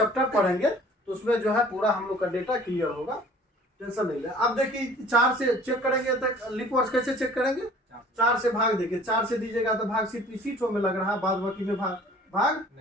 पढ़ेंगे तो उसमें जो है पूरा हम लोग का डेटा क्लियर होगा। टेंशन नहीं ले। अब देखिए 4 से चेक करेंगे तो लीप वर्ष कैसे चेक करेंगे? 4 से भाग देखिए। 4 से दीजिएगा तो भाग सिर्फ इसी ठो में लग रहा है, बाद बाकी में भाग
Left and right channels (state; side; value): normal; both; correlation 0.50